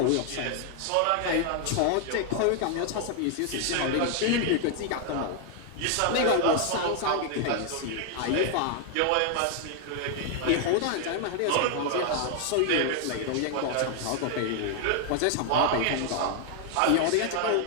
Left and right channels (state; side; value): different; both; correlation 0.00